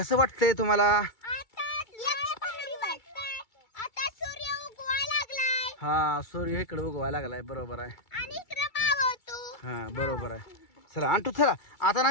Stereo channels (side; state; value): right; late; 2.3 ms